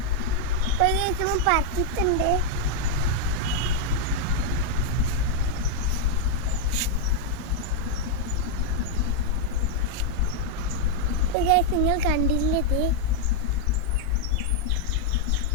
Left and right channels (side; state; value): both; different; correlation -0.01